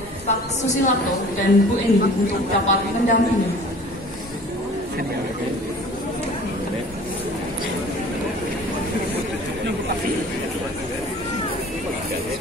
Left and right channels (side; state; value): both; normal; correlation 0.46